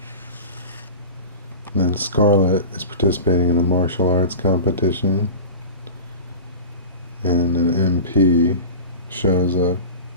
And then And Scarlett is participating in a martial arts competition, and an MP shows up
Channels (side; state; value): both; inverted; correlation -0.32